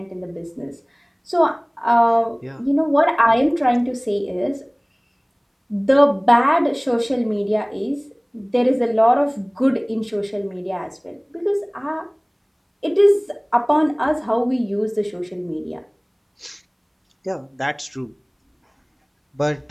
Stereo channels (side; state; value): both; identical; correlation 1.00